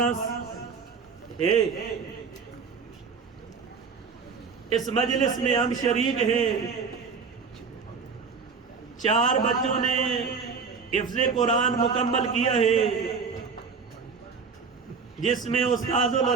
ہے، اس مجلس میں ہم شریک ہیں۔ 4 بچوں نے حفظ قرآن مکمل کیا ہے، جس میں استاذ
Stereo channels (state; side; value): quieter; left; 5.4 dB